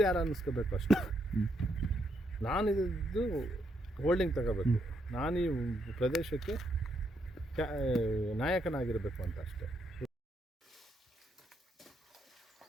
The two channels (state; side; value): normal; both; correlation 0.77